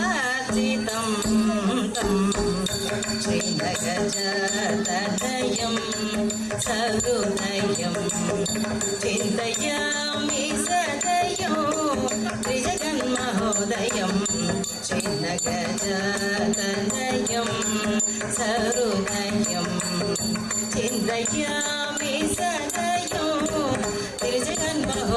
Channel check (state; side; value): identical; both; correlation 1.00